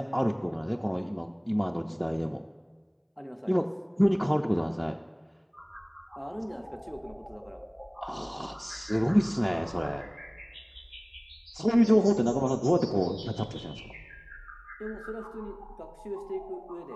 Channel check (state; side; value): identical; both; correlation 1.00